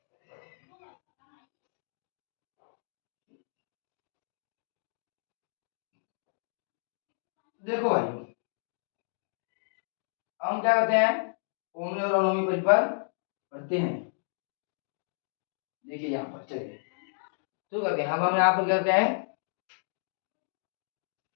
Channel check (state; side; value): silent; right; digital silence